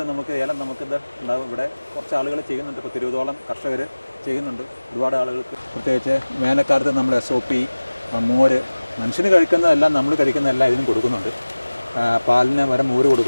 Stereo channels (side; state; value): both; inverted; correlation -1.00